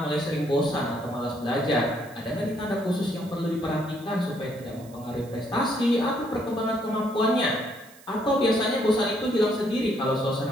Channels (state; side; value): noise; right; hiss, 24 dB below the sound